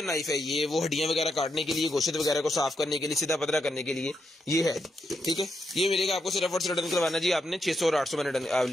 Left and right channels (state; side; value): normal; both; correlation 0.82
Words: नाइफ है ये, वो हड्डियां वगैरह काटने के लिए, गोश्त वगैरह को साफ करने के लिए, सीधा पतला करने के लिए ये है। ठीक है ये मिलेगा आपको सिर्फ और सिर्फ डन करवाना जी आपने 600 और 800 मैंने